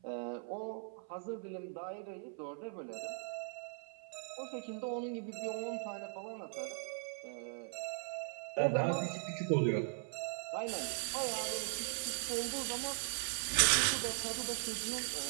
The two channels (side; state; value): left; silent; 51 dB below the other